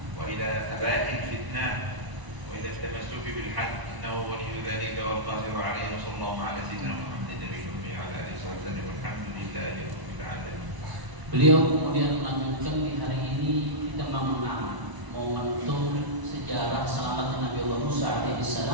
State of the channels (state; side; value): late; left; 1.0 ms